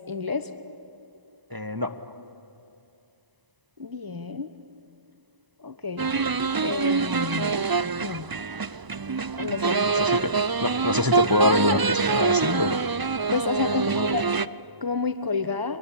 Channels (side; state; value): left; late; 1.0 ms